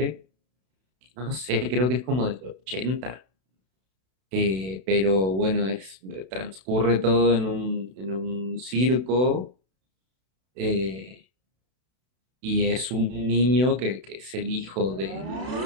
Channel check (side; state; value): left; late; 32 ms